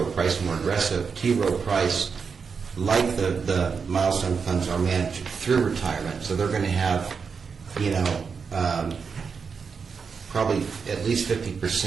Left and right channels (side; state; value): left; quieter; 5.7 dB